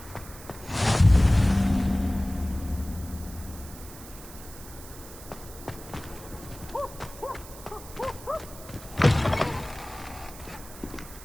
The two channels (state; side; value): noise; right; hiss, 16 dB below the sound